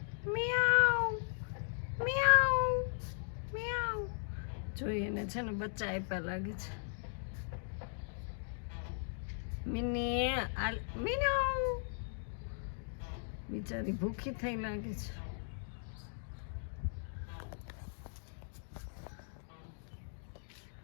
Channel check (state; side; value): silent; right; digital silence